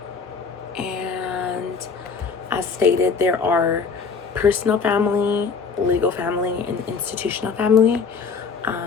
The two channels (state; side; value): quieter; right; 5.3 dB